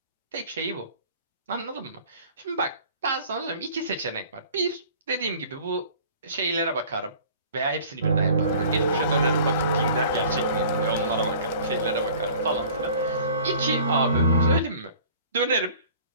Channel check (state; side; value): inverted; both; correlation -0.48